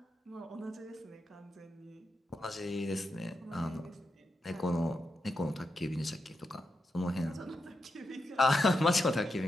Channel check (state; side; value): normal; both; correlation 0.87